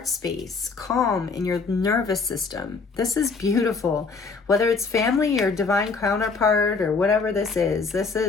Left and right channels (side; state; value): right; quieter; 4.6 dB